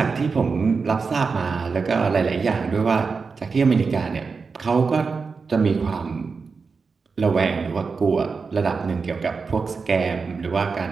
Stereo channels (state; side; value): quieter; left; 4.9 dB